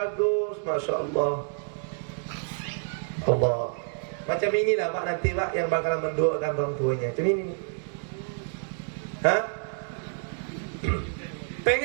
Masya Allah. Allah. Macam inilah Pak nanti Pak yang bakalan mendoakan orang tuanya. Macam ini nih. Hah?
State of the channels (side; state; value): left; silent; digital silence